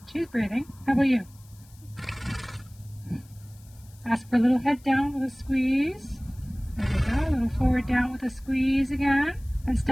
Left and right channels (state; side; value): noise; left; hiss, 27 dB below the sound